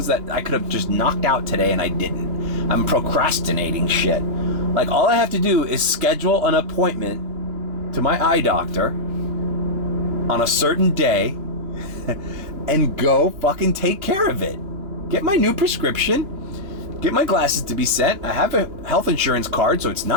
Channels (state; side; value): late; left; 2.8 ms